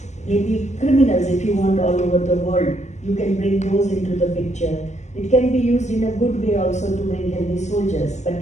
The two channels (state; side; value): late; right; 0.34 ms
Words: maybe criminals if you want all over the world. You can bring those into the picture. It can be used in a good way also to bring healthy soldiers.